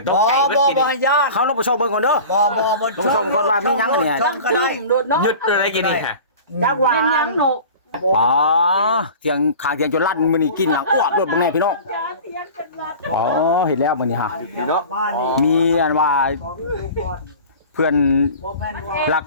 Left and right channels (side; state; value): both; inverted; correlation -0.38